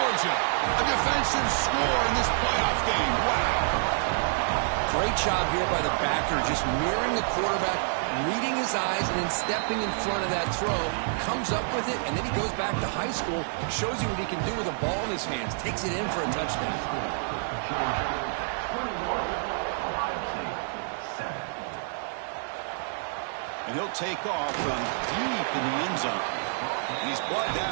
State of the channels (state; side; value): silent; left; 55 dB below the other